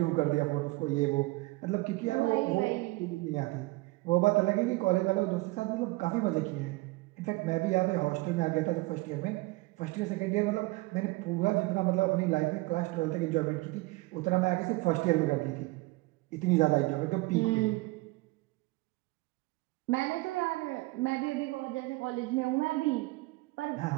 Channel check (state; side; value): quieter; left; 22.3 dB